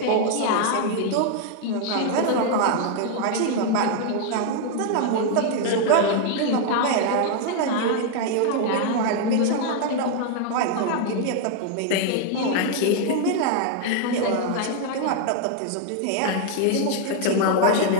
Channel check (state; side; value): different; both; correlation 0.00